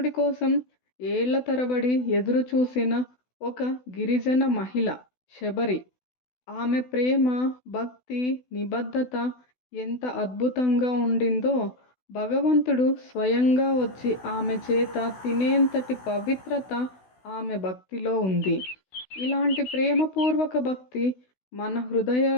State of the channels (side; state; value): right; late; 16 ms